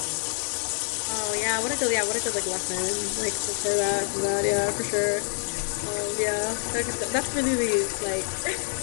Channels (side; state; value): right; silent; digital silence